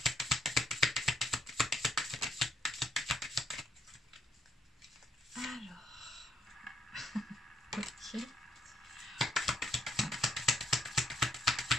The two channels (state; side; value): normal; both; correlation 0.70